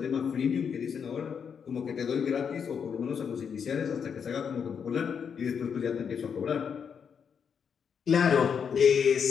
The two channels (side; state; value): right; quieter; 6.9 dB